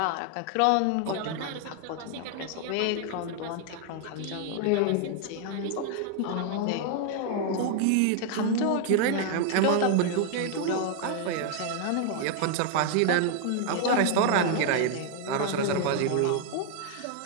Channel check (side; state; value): both; different; correlation 0.00